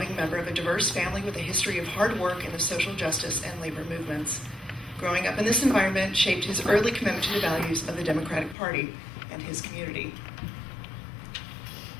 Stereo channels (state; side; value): drops out; right; at 8.6 s